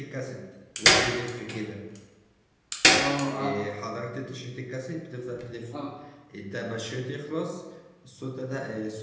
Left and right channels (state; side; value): identical; both; correlation 1.00